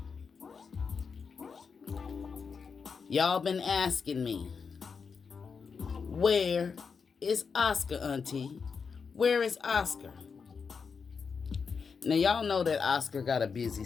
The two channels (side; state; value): right; quieter; 5.6 dB